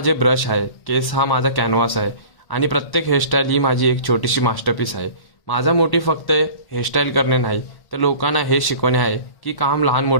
ब्रश आहे, केस हा माझा कॅनव्हास आहे आणि प्रत्येक हेअरस्टाईल ही माझी एक छोटीशी मास्टरपीस आहे. माझा मोटिव्ह फक्त हेअरस्टाईल करणे नाही तर लोकांना हे शिकवणे आहे की काम लहान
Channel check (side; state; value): right; late; 1.1 ms